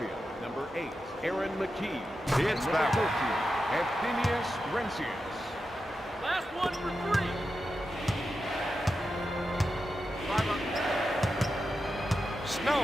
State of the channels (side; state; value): both; normal; correlation 0.89